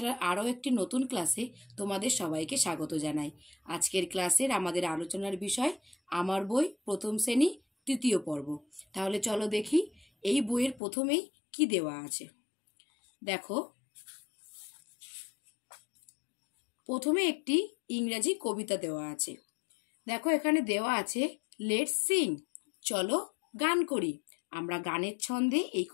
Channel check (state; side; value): drops out; right; at 10.8 s